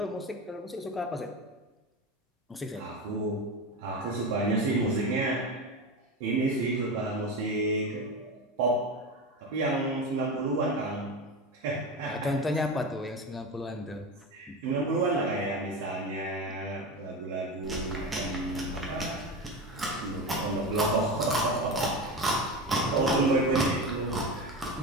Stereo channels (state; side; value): normal; both; correlation 0.22